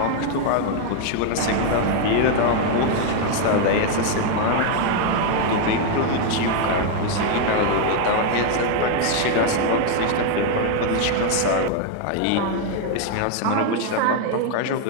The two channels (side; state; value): both; different; correlation 0.01